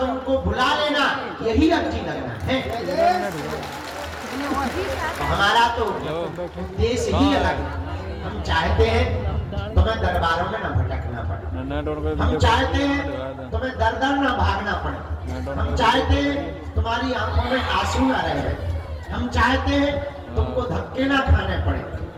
बुला लेना, यही अर्जी लगना है। हमारा तो देश ही अलग है। हम चाहते हैं तुम्हें दरबारों में न भटकना पड़े, हम चाहते हैं तुम्हें दर दर न भागना पड़े, हम चाहते हैं तुम्हारी आंखों में आंसू न रहे, हम चाहते हैं तुमको धक्के ना खाने पड़े,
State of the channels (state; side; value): identical; both; correlation 1.00